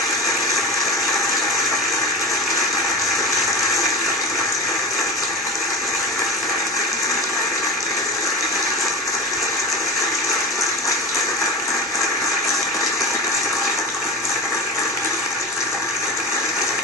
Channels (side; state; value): both; normal; correlation 0.27